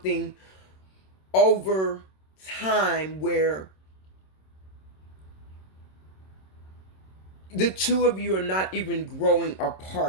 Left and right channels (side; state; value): right; late; 26 ms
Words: over time where the two of you are not even growing